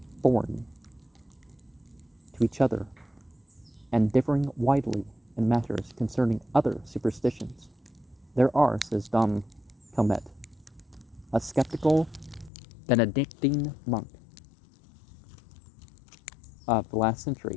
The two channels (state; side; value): drops out; right; at 12.5 s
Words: foreign to each other and differing widely in matters concerning other superstitions. There are, says Dom Calmet, a skeptical Benedictine monk of the last century,